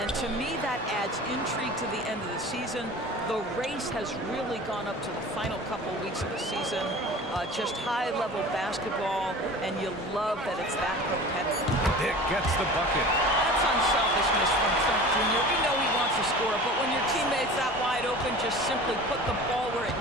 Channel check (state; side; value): normal; both; correlation 0.39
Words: to me, that adds intrigue to the end of the season. The race has really gone up to the final couple weeks of the season. Just high-level basketball, and you love that it's that competitive. It gets the bucket. That's unselfishness from Trent Jr. We know he wants to score, but when your teammate's that wide open, just simply put the ball where it